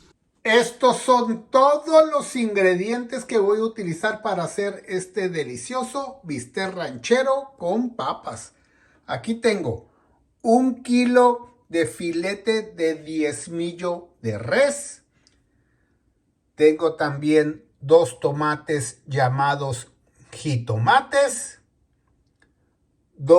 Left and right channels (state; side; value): identical; both; correlation 1.00